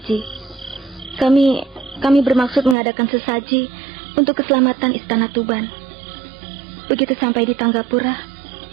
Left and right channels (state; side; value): drops out; left; at 2.8 s